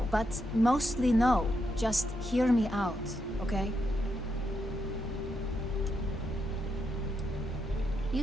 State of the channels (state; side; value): normal; both; correlation 0.82